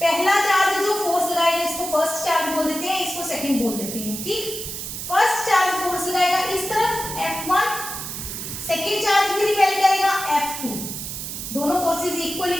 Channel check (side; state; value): right; noise; hiss, 7 dB below the sound